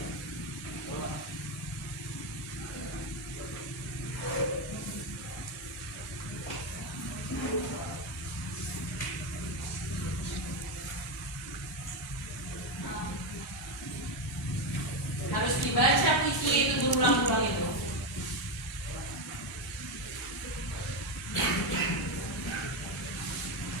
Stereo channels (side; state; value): both; normal; correlation 0.10